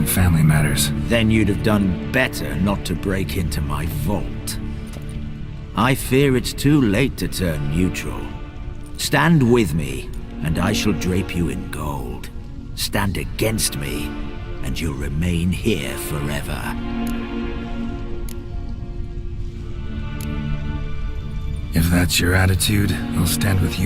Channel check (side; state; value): both; identical; correlation 1.00